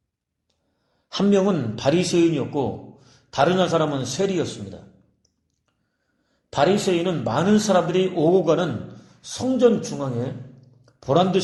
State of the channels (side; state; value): both; identical; correlation 1.00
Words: 한 명은 바리새인이었고 다른 한 사람은 세리였습니다. 바리새인은 많은 사람들이 오고 가는 성전 중앙에